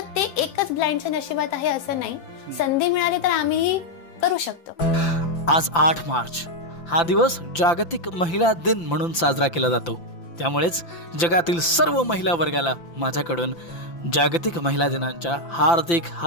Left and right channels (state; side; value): late; right; 5.9 ms